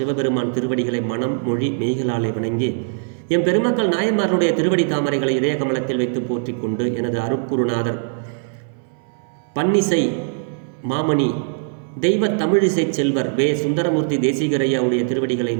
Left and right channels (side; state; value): left; silent; 63 dB below the other